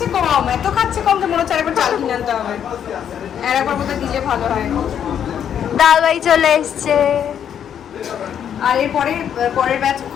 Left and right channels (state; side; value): quieter; right; 8.9 dB